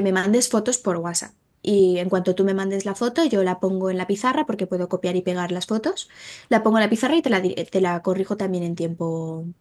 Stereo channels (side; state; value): both; identical; correlation 1.00